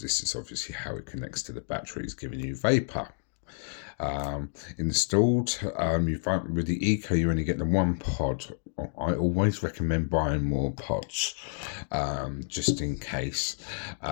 is obviously how it connects to the batteries, giving you vapor. Installed, you find with the Eco you only get the one pod. I always recommend buying more pods, just in case.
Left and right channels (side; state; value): right; silent; digital silence